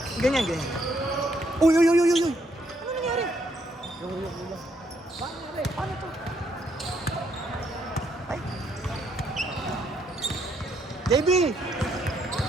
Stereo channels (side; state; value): both; normal; correlation 0.73